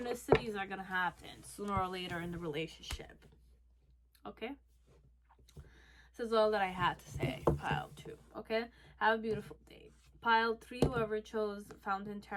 are gonna happen sooner or later in the relationship. Okay, this is all that I had to say. Pile 2. Okay, have a beautiful day. Pile 3, whoever chose Fountain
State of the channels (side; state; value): both; identical; correlation 1.00